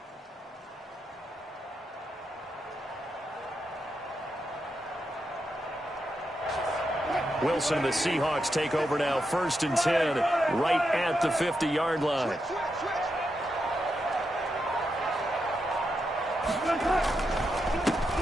Wilson and the Seahawks take over now, 1st and 10, right at the 50-yard line.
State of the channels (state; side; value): normal; both; correlation 0.85